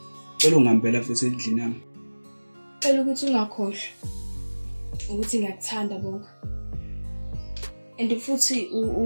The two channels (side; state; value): both; inverted; correlation -1.00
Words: Cela ungihambela futhi endlini yami. Cela ukuthi ungakhohlwa ukuthi ngiyakuthanda bonga. And futhi